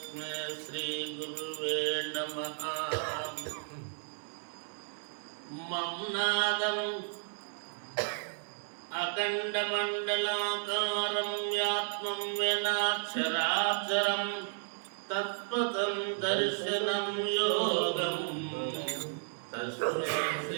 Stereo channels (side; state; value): left; silent; 55 dB below the other